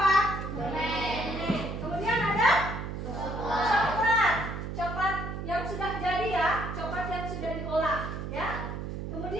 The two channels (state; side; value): noise; right; hum, 6 dB below the sound